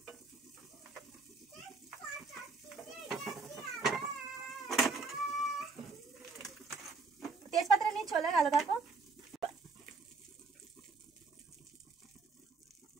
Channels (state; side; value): quieter; left; 4.3 dB